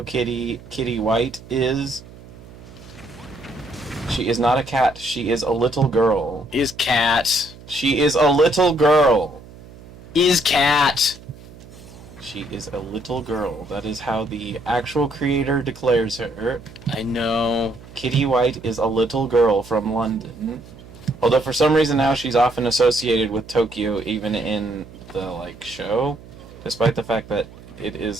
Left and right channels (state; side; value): noise; right; hum, 19 dB below the sound